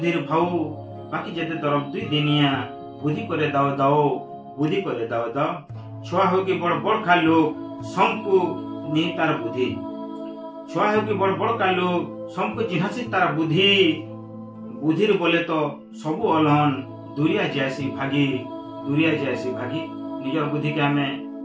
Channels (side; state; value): both; identical; correlation 1.00